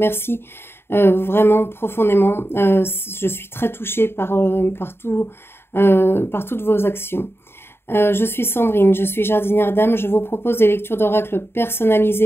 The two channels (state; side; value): late; right; 0.11 ms